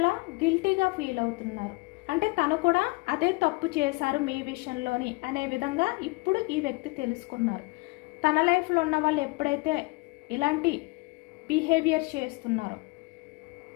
గిల్టీగా ఫీల్ అవుతున్నారు. అంటే తను కూడా అదే తప్పు చేశారు మీ విషయంలోని అనే విధంగా ఇప్పుడు ఈ వ్యక్తి తెలుసుకున్నారు. తన లైఫ్లో ఉన్న వాళ్ళు ఎప్పుడైతే ఇలాంటి బిహేవియర్ చేస్తున్నారో,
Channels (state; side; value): quieter; right; 25.3 dB